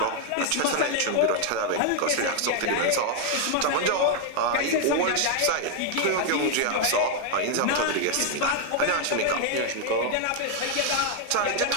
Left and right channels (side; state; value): both; different; correlation 0.00